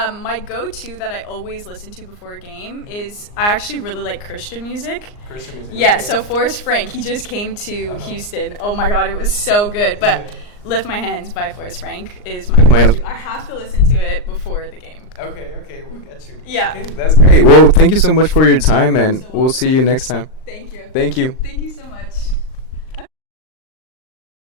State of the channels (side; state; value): right; late; 39 ms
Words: go-to that I always listen to before a game is, I actually really like Christian music. Christian music. Yeah. So Forrest Frank, he just came to Houston. Oh my God, it was so good. But "Lift My Hands" by Forrest Frank is my go-to. I have to listen to it before the game. Okay, we'll get you. Yeah. Okay, that's great. Well, thank you so much for your time, and we'll see you next time. Thank you. Thank you. Thank you so much.